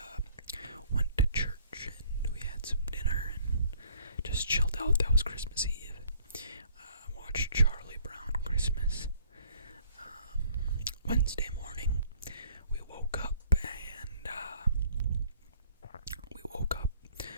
went to church, and we had some dinner and just chilled out. That was Christmas Eve. Watched Charlie Brown Christmas. Wednesday morning, we woke up, and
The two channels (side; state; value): both; inverted; correlation -0.58